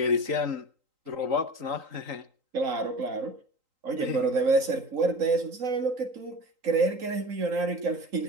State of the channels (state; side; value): late; left; 3.8 ms